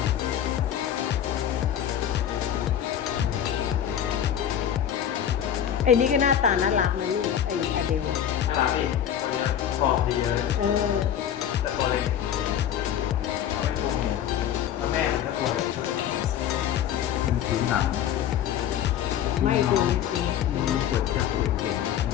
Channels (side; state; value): right; quieter; 9.9 dB